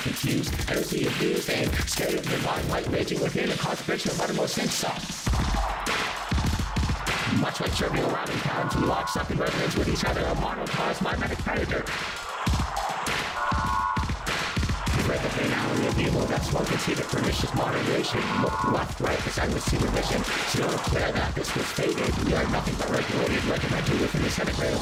confused. Energy abused and scared of divine light raging within a concentration of uttermost insult. Much like trivial rallying towns, we lock up in resonance with each other. A monocosm, mimetic predator. Read the finality of evil that's one can see the pernicious moderation. Look left, right, as I would see the mission. Still declare that this was fated. We are nothing but regulated, regimented within the centigrade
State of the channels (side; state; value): both; identical; correlation 1.00